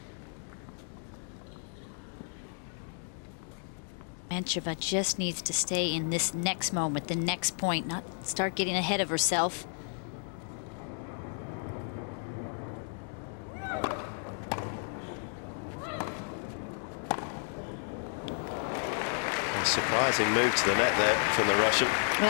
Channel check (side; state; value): right; silent; 56 dB below the other